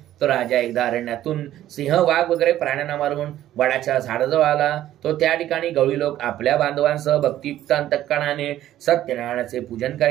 तो राजा एकदा अरण्यातून सिंह, वाघ वगैरे प्राण्यांना मारून वडाच्या झाडाजवळ आला। तो त्या ठिकाणी गवळी लोक आपल्या बांधवांसह भक्तियुक्त अंतःकरणाने सत्यनारायणाचे पूजन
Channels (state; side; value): quieter; left; 13.0 dB